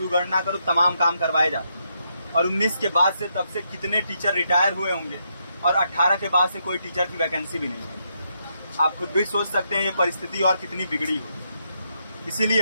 करो, तमाम काम करवाए जाते हैं। और 19 के बाद से तब से कितने टीचर रिटायर हुए होंगे और 18 के बाद से कोई टीचर की वैकेंसी भी नहीं है। आप खुद भी सोच सकते हैं ये परिस्थिति और कितनी बिगड़ी हो। इसीलिए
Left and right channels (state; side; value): inverted; both; correlation -0.79